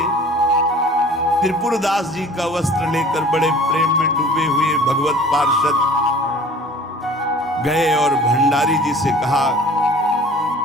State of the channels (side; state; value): both; normal; correlation 0.46